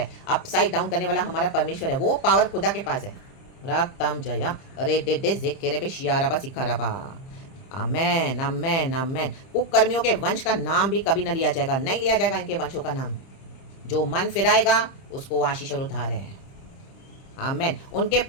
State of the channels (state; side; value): late; right; 30 ms